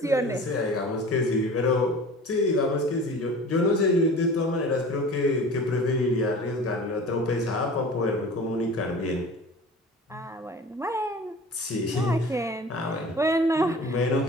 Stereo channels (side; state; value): both; normal; correlation 0.40